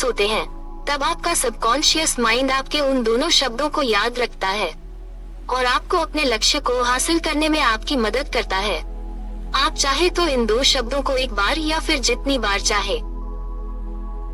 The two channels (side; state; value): both; identical; correlation 1.00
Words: हैं, तब आपका सबकॉन्शियस माइंड आपके उन दोनों शब्दों को याद रखता है और आपको अपने लक्ष्य को हासिल करने में आपकी मदद करता है। आप चाहे तो इन 2 शब्दों को एक बार या फिर जितनी बार चाहे